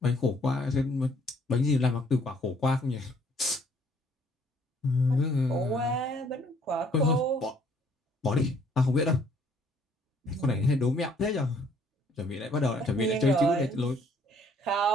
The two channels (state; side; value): normal; both; correlation 0.63